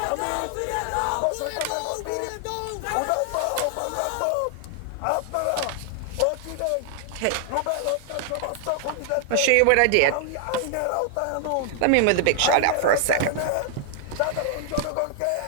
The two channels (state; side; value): different; both; correlation 0.00